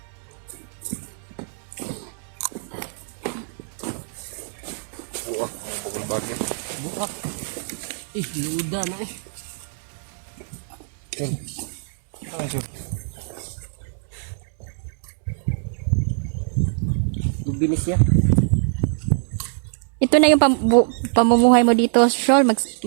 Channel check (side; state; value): left; silent; digital silence